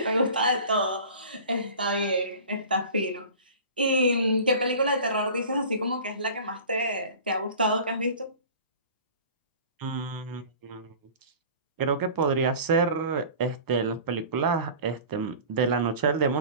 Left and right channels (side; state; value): both; inverted; correlation -0.41